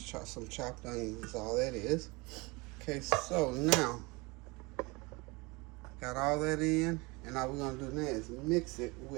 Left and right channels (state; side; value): quieter; left; 25.7 dB